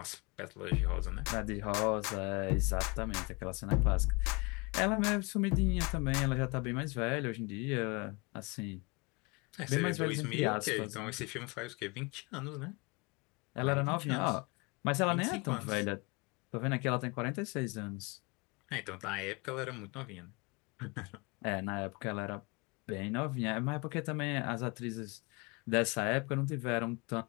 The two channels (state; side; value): quieter; right; 28.1 dB